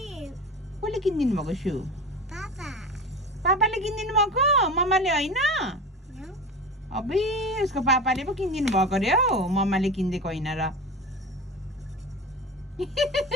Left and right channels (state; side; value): normal; both; correlation 0.30